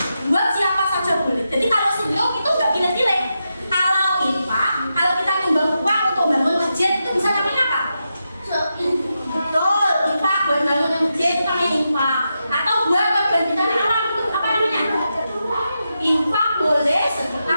buat siapa saja boleh. Jadi kalau sedekah itu nggak pilih-pilih. Kalau infak, kalau kita nyumbang uang untuk bangun masjid itu bisa namanya apa? Betul, infak buat bangun masjid itu namanya infak. Atau buat kebanjiran alam itu apa namanya? Infak boleh,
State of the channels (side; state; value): both; inverted; correlation -0.87